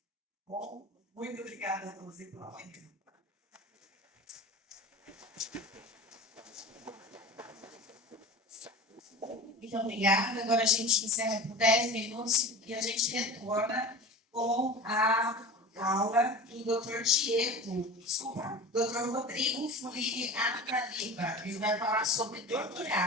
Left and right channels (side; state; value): both; normal; correlation 0.34